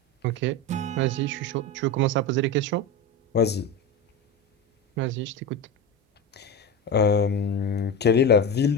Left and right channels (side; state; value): both; normal; correlation 0.22